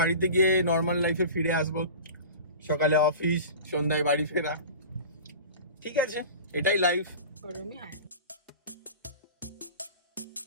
গিয়ে নর্মাল লাইফে ফিরে আসবো। সকালে অফিস, সন্ধ্যায় বাড়ি ফেরা, ঠিক আছে, এটাই লাইফ। গরমই হয়।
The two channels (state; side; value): inverted; both; correlation -0.36